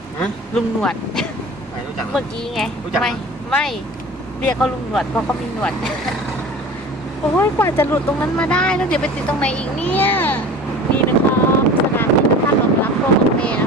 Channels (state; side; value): normal; both; correlation 0.38